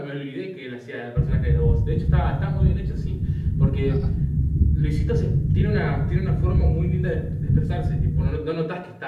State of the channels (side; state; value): both; identical; correlation 1.00